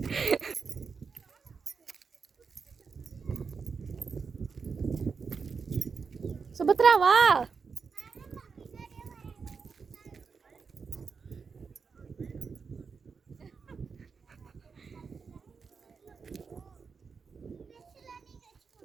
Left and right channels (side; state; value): left; quieter; 5.4 dB